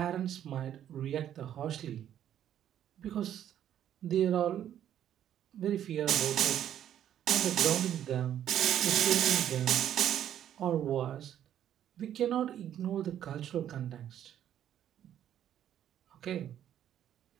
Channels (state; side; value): quieter; left; 10.6 dB